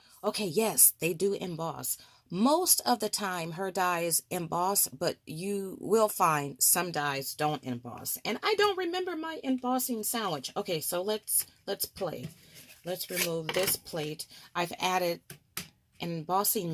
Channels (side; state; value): both; identical; correlation 1.00